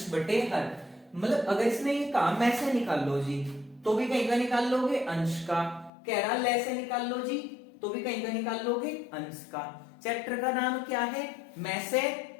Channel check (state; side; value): drops out; right; at 5.9 s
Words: बटे हर। मतलब अगर इसने ये कहा मैं से निकाल लो जी, तो भी कहीं का निकाल लोगे, अंश का। कह रहा ले से निकाल लो जी, तो भी कहीं का निकाल लोगे, अंश का। चैप्टर का नाम क्या है, मैं से